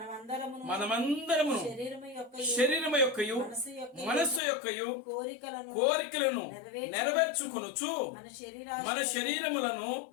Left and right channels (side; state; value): right; drops out; at 4.4 s